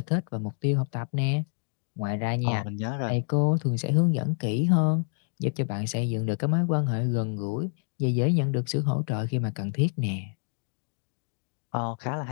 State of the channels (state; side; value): silent; right; 60 dB below the other